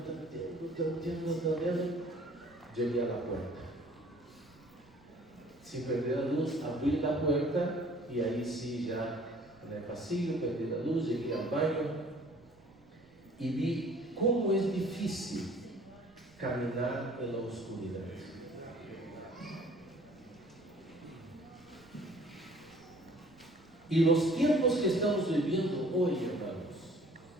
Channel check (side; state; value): right; noise; rumble, 28 dB below the sound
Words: llegué a la puerta. Sin perder la luz, abrí la puerta y ahí sí ya en el pasillo perdí la luz, llegué al baño y vi cómo es difícil caminar en la oscuridad. Y los tiempos que estamos viviendo hoy, hermanos,